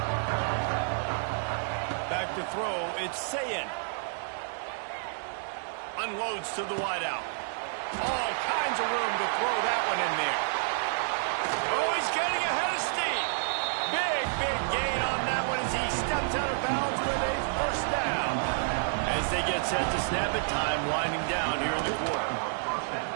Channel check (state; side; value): silent; left; digital silence